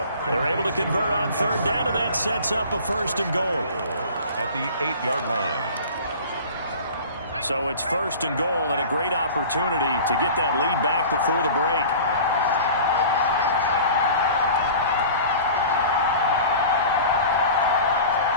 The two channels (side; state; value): both; inverted; correlation -0.40